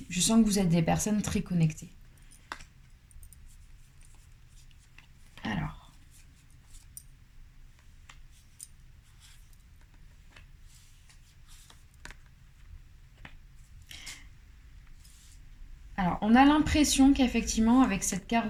Je sens que vous êtes des personnes très connectées. Alors, on a l'impression qu'effectivement, avec cette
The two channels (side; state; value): both; identical; correlation 1.00